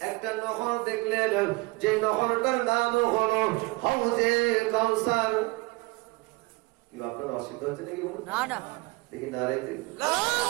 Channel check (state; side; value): quieter; left; 24.3 dB